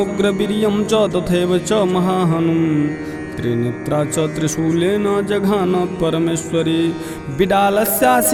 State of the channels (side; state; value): both; identical; correlation 1.00